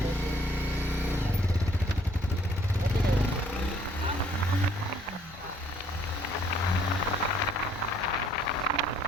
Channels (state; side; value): normal; both; correlation 0.62